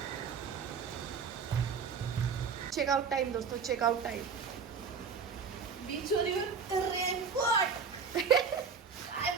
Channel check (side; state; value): left; quieter; 5.8 dB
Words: चेकआउट टाइम दोस्तों, चेकआउट टाइम. बीचवर येऊन रेनकोट.